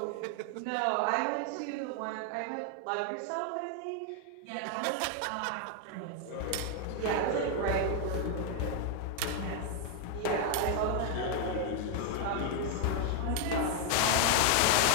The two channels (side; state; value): both; different; correlation 0.00